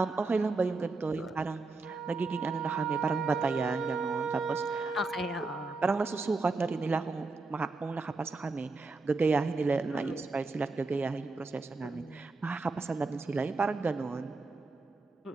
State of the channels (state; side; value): quieter; left; 3.7 dB